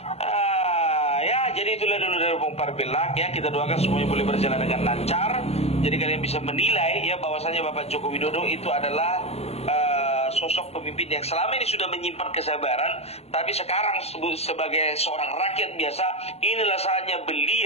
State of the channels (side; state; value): right; late; 0.30 ms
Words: Ya, jadi itulah dulu dari Opung Parpelak ya. Kita doakan semuanya boleh berjalan dengan lancar. Jadi kalian bisa menilai ya bahwasanya Bapak Joko Widodo itu adalah sosok pemimpin yang selama ini sudah menyimpan kesabaran, tapi sekarang sebagai seorang rakyat biasa, inilah saatnya